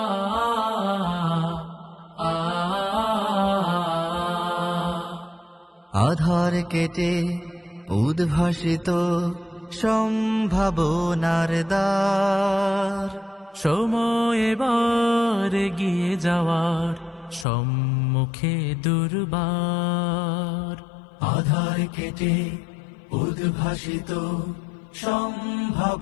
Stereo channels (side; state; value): right; drops out; at 17.4 s